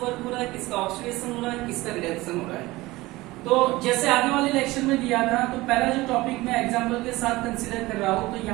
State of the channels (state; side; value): quieter; left; 19.8 dB